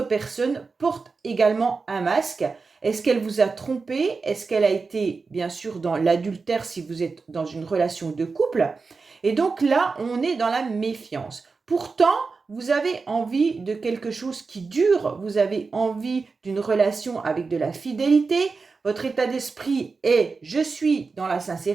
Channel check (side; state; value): left; quieter; 4.4 dB